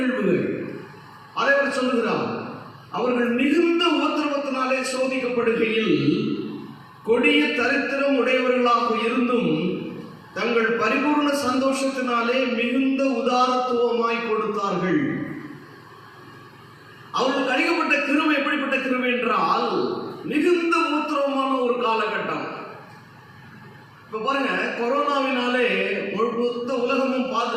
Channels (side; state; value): both; identical; correlation 1.00